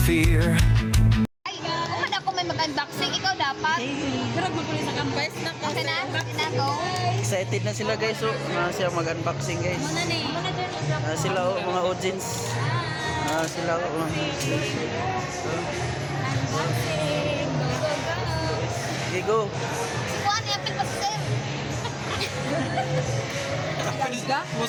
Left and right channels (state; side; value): identical; both; correlation 1.00